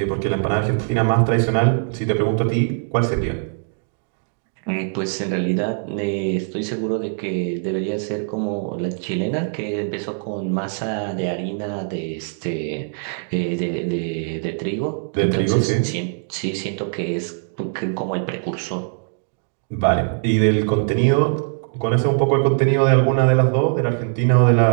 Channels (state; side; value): silent; left; digital silence